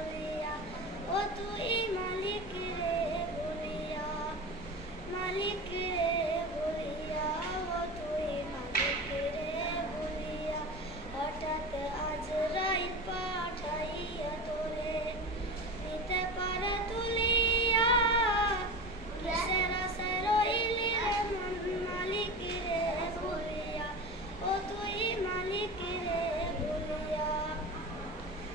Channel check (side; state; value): both; normal; correlation 0.28